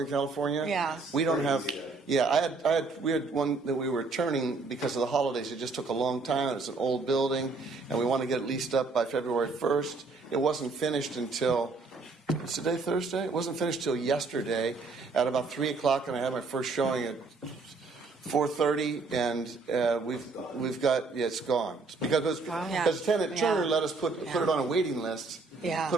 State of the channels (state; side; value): quieter; left; 4.1 dB